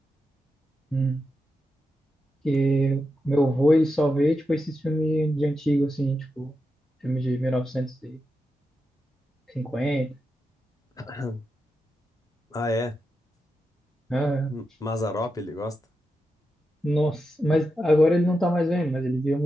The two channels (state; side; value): normal; both; correlation 0.88